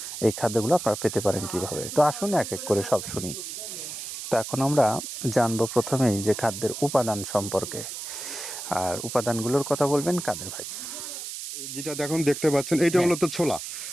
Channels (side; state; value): right; noise; hiss, 8 dB below the sound